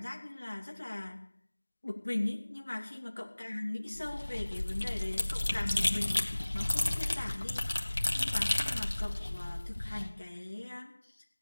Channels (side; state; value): both; inverted; correlation -1.00